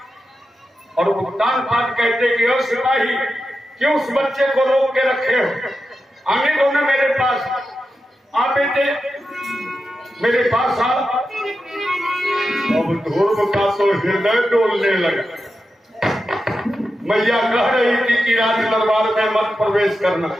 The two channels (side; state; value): both; normal; correlation 0.90